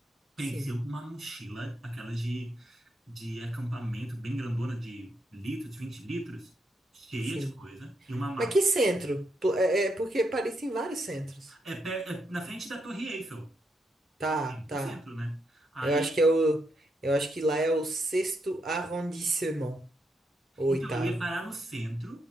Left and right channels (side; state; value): both; normal; correlation 0.80